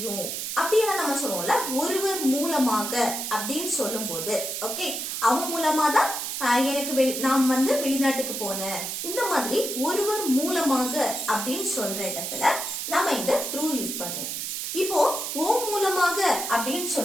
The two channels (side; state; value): right; noise; hiss, 4 dB below the sound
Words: அப்படின்னு நம்ம சொல்லுவோம்ல. ஒருவர் மூலமாக அப்படின்னு சொல்லும் போது ஓகே, அவன் மூலமா தான் எனக்கு நான் வந்து வெளிநாட்டுக்கு போனேன், இந்த மாதிரி ஒருவர் மூலமாக அப்படின்னு சொல்ற இடத்துல நம்ம இந்த through யூஸ் பண்ணுவோம். இப்போ ஓ மூலமாக அப்படின்னு